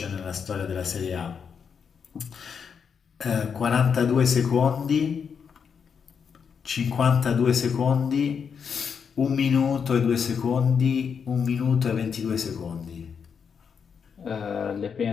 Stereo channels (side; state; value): right; quieter; 6.6 dB